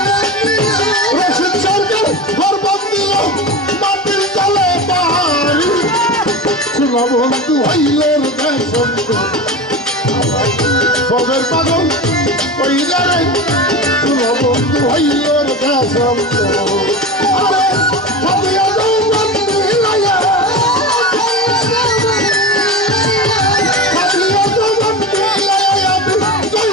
রশিদ সরকার ঘর বাঁধিল মাটির তলে বাড়ি সোনা বন্ধু হইল রে দেশান্ত খবর পাগল কইরা রে সোনা বন্ধু হইল রে দেশান্ত আরে ভাবিয়া যাও বন্ধু হিলাইয়া ভাবিয়া যাও বন্ধু হিলাইয়া আমি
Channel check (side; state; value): both; normal; correlation 0.26